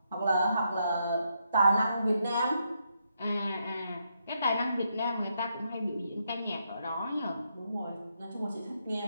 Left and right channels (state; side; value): inverted; both; correlation -0.79